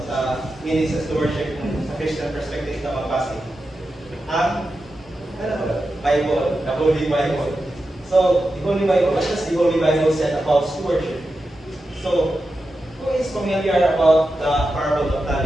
meaning sa stewardship sa Christian perspective na magbase. Ang Bible, the Holy Bible. So, the Holy Bible, what does the Holy Bible say about stewardship? So, who is familiar about the parable of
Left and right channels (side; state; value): both; normal; correlation 0.90